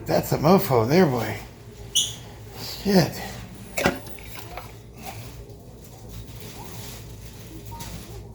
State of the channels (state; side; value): identical; both; correlation 1.00